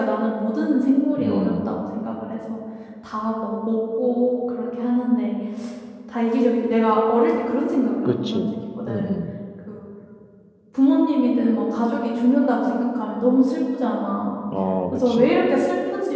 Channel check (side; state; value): both; identical; correlation 1.00